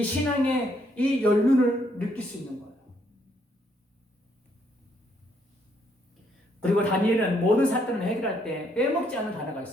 신앙의 이 연륜을 느낄 수 있는 거예요. 그리고 다니엘은 모든 사건을 해결할 때 빼먹지 않은 단어가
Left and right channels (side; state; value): both; normal; correlation 0.71